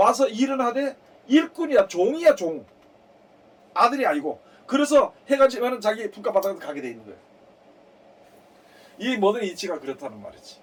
일은 하되 일꾼이야, 종이야, 종. 아들이 아니고. 그래서 해가 지면은 자기 품값바닥에 가게 돼 있는 거예요. 이 모든 이치가 그렇다는 말이지.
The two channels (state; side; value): identical; both; correlation 1.00